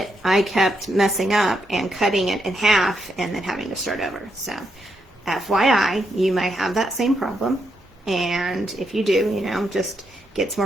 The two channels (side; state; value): both; normal; correlation 0.80